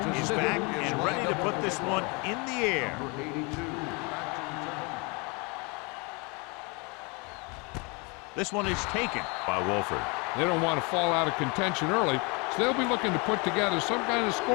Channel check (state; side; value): quieter; right; 29.9 dB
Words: is back and ready to put this one in the air. Number 82. This one is taken by Wolford. They don't want to fall out of contention early, so they'll be looking to put together some kind of